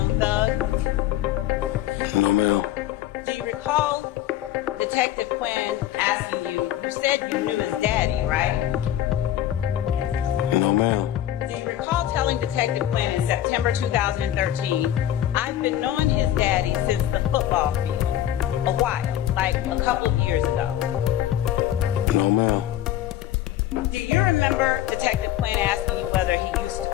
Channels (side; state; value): right; quieter; 12.3 dB